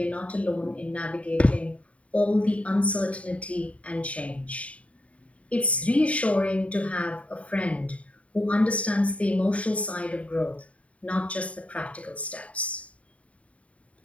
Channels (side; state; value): right; late; 0.065 ms